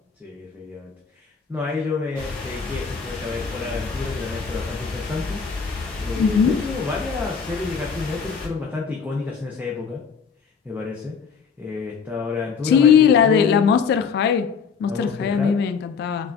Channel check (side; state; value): right; quieter; 6.0 dB